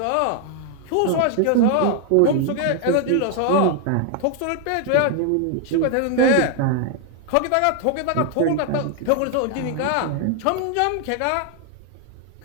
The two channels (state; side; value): different; both; correlation 0.00